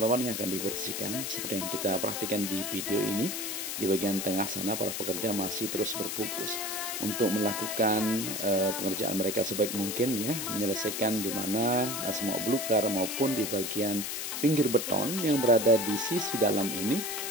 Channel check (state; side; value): noise; left; hiss, 4 dB below the sound